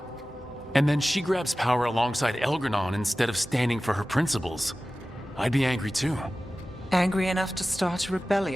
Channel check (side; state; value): both; normal; correlation 0.96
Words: And then she grabs power alongside Elganon instead of standing for her principles. I'd be angry too. Angry enough to start a